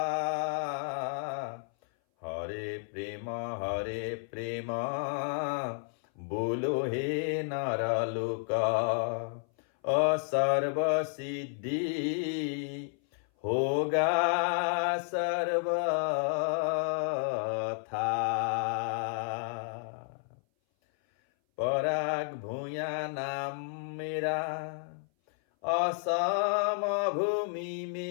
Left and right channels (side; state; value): right; silent; 57 dB below the other